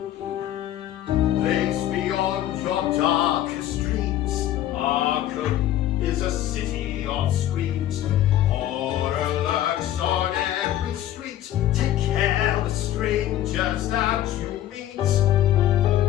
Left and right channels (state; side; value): quieter; right; 12.7 dB